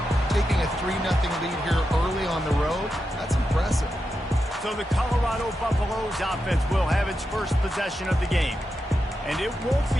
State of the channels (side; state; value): both; normal; correlation 0.88